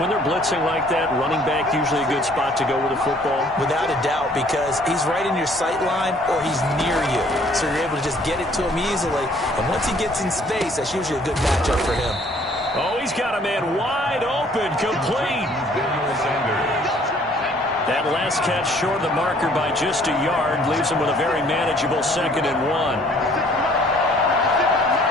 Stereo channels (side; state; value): both; normal; correlation 0.59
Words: they're blitzing like that, running back usually a good spot to go with the football? Without a doubt, because he's right in your sight line or he's near you. So you're able to just get it to him easily. And once he gets in space, that's usually a good matchup for him. Oh, he's got a man wide open, complete. That last catch short of the marker by just a yard leaves him with a very manageable 2nd and 1.